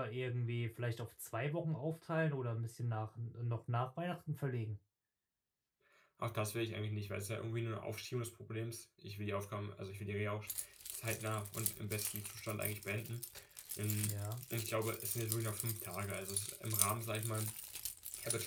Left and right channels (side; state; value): both; identical; correlation 1.00